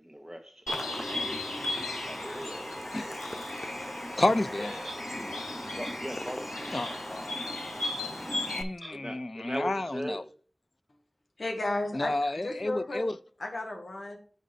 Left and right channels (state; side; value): normal; both; correlation 0.94